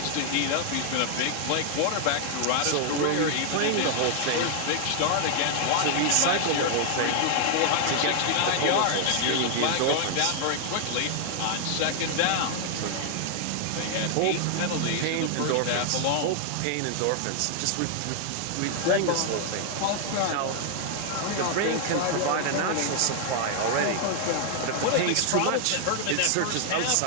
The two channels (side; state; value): both; different; correlation 0.00